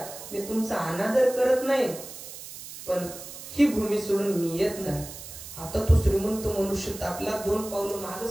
मी तुमचा अनादर करत नाही, पण ही भूमी सोडून मी येत नाही. आता तो श्रीमंत मनुष्य तापला, 2 पावलं मागे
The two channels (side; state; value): right; noise; hiss, 13 dB below the sound